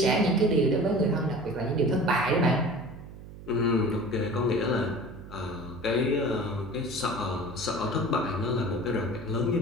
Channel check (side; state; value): right; noise; hum, 15 dB below the sound